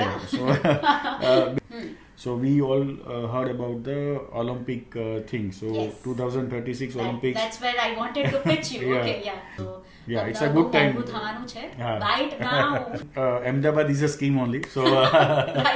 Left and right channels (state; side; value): identical; both; correlation 1.00